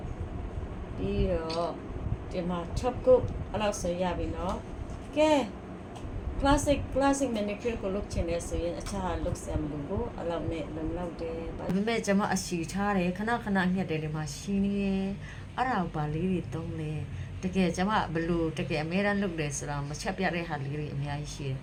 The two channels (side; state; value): both; identical; correlation 1.00